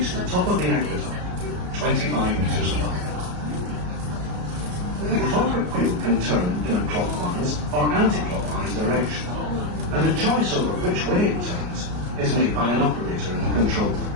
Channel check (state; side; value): late; left; 34 ms